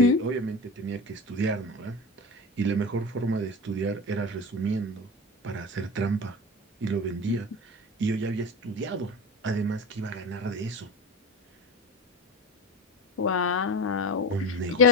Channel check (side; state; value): both; normal; correlation 0.26